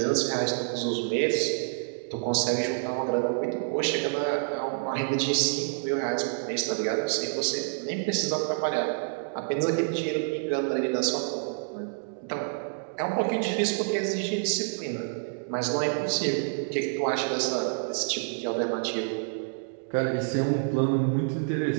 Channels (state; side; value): silent; left; digital silence